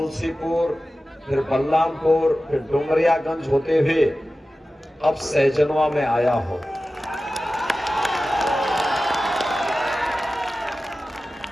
फिर बलरामपुर, फिर डुमरियागंज होते हुए अब सहजनवा में आया हूं।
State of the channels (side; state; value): both; normal; correlation 0.95